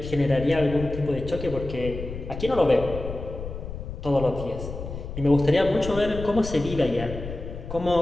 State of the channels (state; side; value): noise; left; rumble, 9 dB below the sound